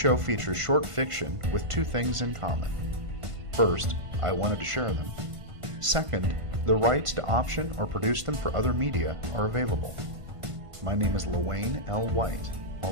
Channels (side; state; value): left; late; 1.5 ms